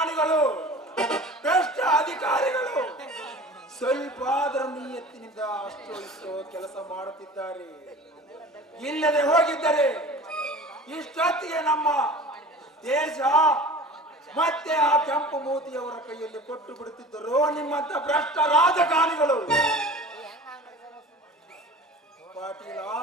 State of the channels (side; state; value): both; normal; correlation 0.40